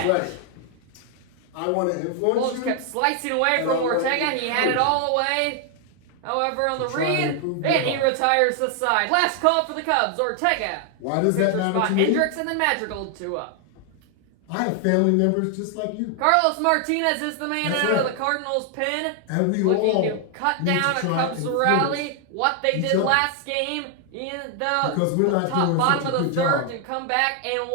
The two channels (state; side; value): different; both; correlation 0.00